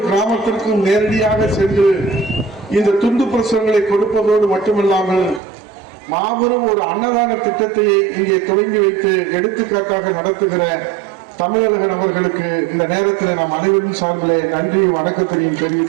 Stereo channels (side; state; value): left; drops out; at 5.4 s